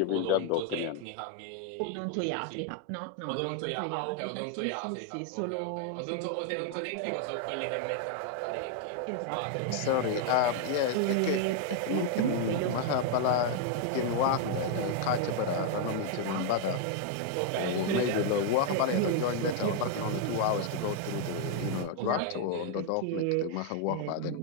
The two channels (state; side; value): different; both; correlation 0.00